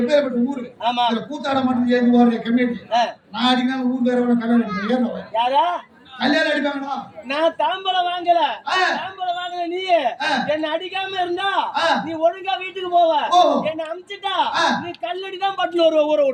எப்பேற்பட்ட ஊரு? ஆமா. இதுல கூத்தாட மட்டும் ஏறி ஓடுற கம்யூனிட்டி. ஆ, நான் அடிக்கா ஊர் பேர கல்யாணம் அடிப்பேன். ஏறவன் யாரா? கல்யாணம் அடிப்பாங்கடா. நான் தாம்பலம் வாங்கல. ஆ. தாம்பலம் வாங்கல நீ. ஆ. என்ன அடிக்காம இருந்தா ஆ. நீ ஒழுங்கா வீட்டுக்கு போவ. ஓ. என்ன அமிச்சிட்டா ஆ. நீ கல்லடி தான் பட்டுல ஒரு ஊரை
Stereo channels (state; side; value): identical; both; correlation 1.00